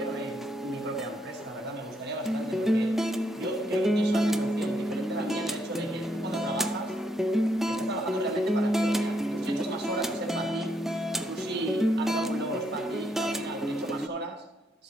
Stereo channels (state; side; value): normal; both; correlation 0.75